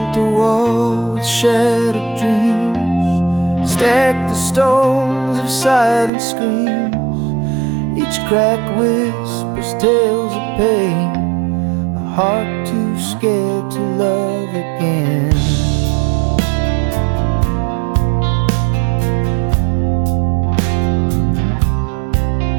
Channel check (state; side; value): drops out; left; at 6.1 s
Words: a wall with shattered dreams, stacked the stones of silent screams. Each crack whispers tales of pain, a heart too scared to love again.